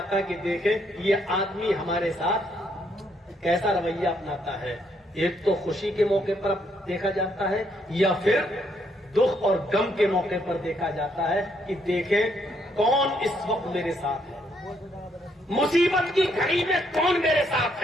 ہے کہ دیکھیں یہ آدمی ہمارے ساتھ کیسا رویہ اپناتا ہے۔ ایک تو خوشی کے موقع پر دیکھا جاتا ہے یا پھر دکھ اور غم کے موقع پر دیکھا جاتا ہے کہ دیکھیں کون اس وقت میرے ساتھ ہے، مصیبت کی گھڑی میں کون میرے ساتھ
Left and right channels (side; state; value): both; normal; correlation 0.72